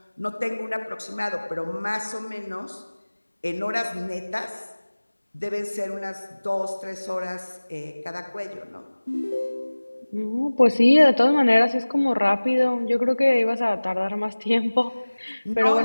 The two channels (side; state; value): both; inverted; correlation -1.00